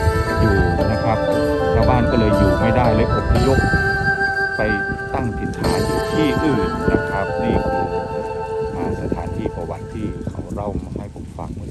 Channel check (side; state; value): both; identical; correlation 1.00